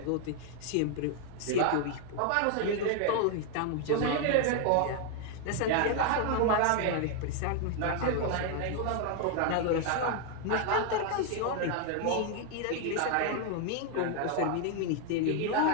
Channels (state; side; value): different; both; correlation 0.00